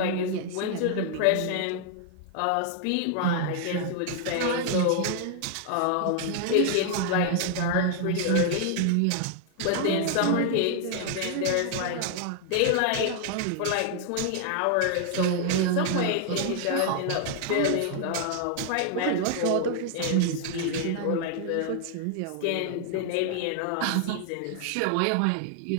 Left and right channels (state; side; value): different; both; correlation 0.00